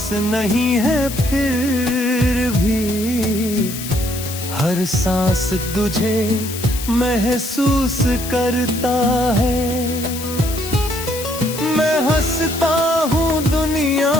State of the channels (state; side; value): noise; left; hiss, 9 dB below the sound